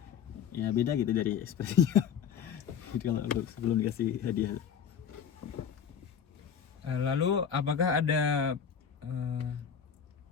ya beda gitu dari ekspresinya. Jadi kalau sebelum dikasih hadiah. Lalu apakah ada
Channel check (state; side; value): quieter; right; 7.7 dB